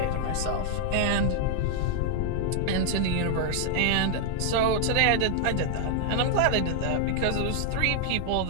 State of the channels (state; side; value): different; both; correlation -0.01